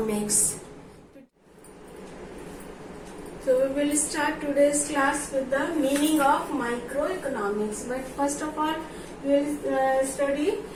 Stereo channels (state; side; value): identical; both; correlation 1.00